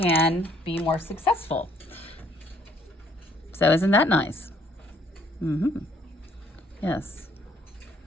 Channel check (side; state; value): both; normal; correlation 0.64